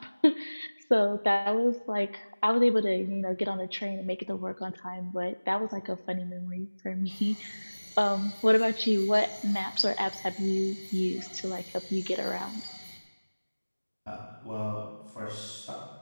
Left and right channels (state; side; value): inverted; both; correlation -1.00